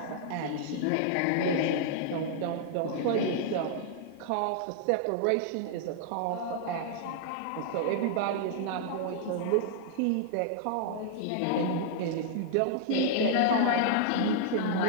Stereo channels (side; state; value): both; different; correlation -0.01